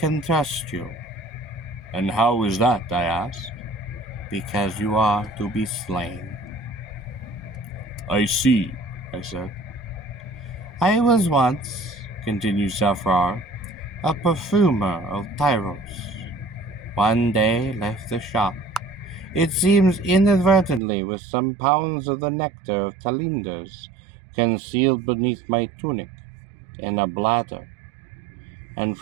trust you. And how is that, I asked. Because you are to be slain. I see, I said. I was once, continued Safrar, a perfumer of Tyros. One day left the shop, it seems inadvertently with some pounds of the nectar of Talinders concealed beneath my tunic in a bladder, and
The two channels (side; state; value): left; drops out; at 20.8 s